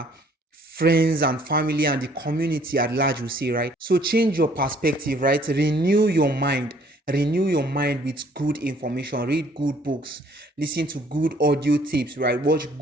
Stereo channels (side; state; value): both; normal; correlation 0.60